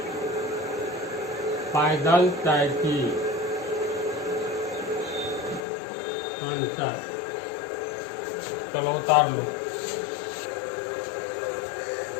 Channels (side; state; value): right; drops out; at 5.6 s